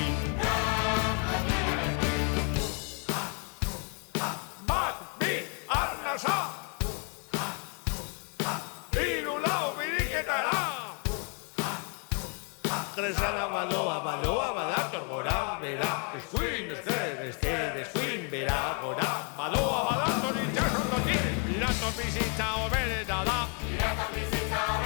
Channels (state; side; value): quieter; right; 38.9 dB